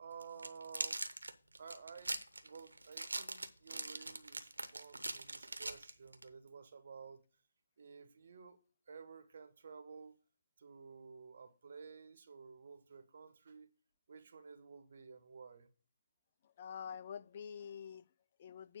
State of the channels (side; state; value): both; inverted; correlation -0.91